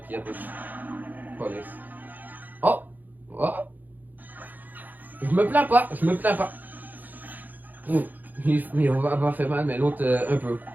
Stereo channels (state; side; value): late; left; 0.084 ms